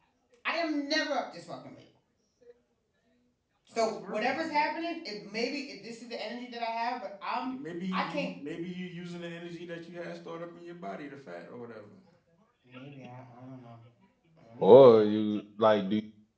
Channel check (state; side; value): identical; both; correlation 1.00